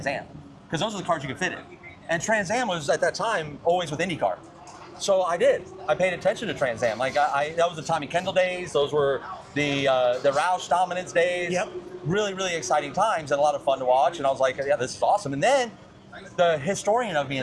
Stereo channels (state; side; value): identical; both; correlation 1.00